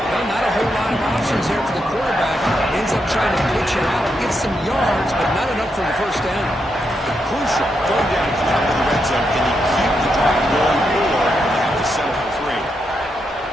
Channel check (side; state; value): both; normal; correlation 0.82